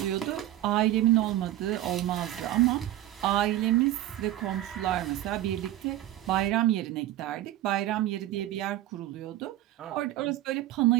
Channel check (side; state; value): left; quieter; 14.2 dB